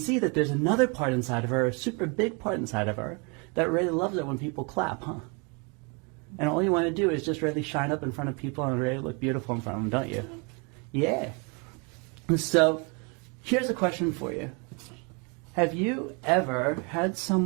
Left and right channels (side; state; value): left; quieter; 33.1 dB